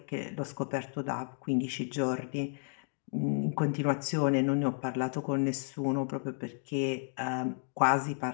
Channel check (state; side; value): silent; right; 56 dB below the other